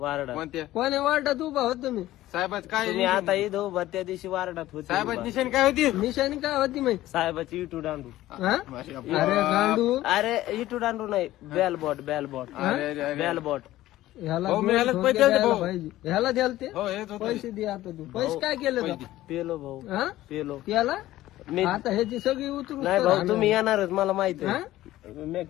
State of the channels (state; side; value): quieter; right; 15.4 dB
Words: कोणत्या कोण्या वार्डात उभा होत तुम्ही? साहेबाच काय तुम्ही आता इथं उभा त्या दिवशी वार्डात होते साहेबाची उभा. निशाणी काय होती? निशाणी काय होती माहिती? साहेबाची इटू दांडू. हा? अरे गांडू, अरे इटू दांडू नाही, बेलबॉट बेलबॉट अरे अरे अरे बेलबॉट. ह्याला भाऊ, मी दोन ह्यालाच ठोके पैसे द्यायचे द्यायला भाऊ. पाहिजे. ह्याला द्याल ते हो हेच होत. पैसे दे आता तू. पैसे काय केले तू? पेलो भाऊ हा? पेलो. याला मी आता ह्याची सगळी उतरून नाही भाऊ तुम्ही येणारच मला माहिती हा? आहे. मी